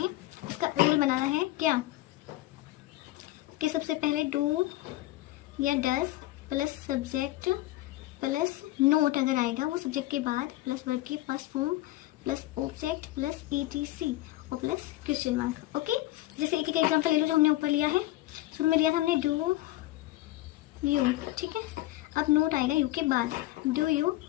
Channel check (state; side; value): quieter; right; 17.0 dB